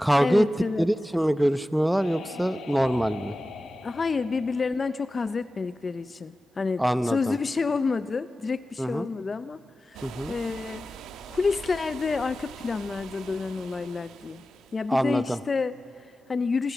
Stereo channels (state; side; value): normal; both; correlation 0.95